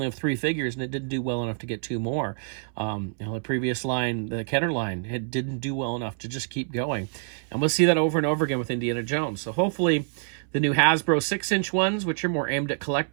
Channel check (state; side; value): silent; left; 61 dB below the other